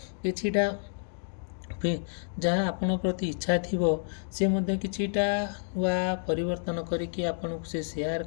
किछिटा जहाँ आपण प्रति इच्छा थिबो से मध्य किछिटा वा परिवर्तन करिकि आपण से शेयर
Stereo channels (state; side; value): silent; right; digital silence